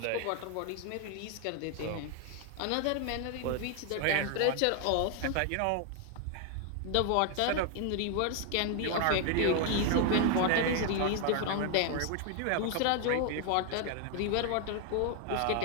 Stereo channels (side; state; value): both; different; correlation 0.00